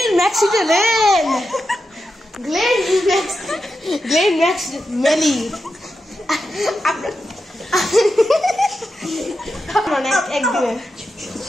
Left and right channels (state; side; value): normal; both; correlation 0.89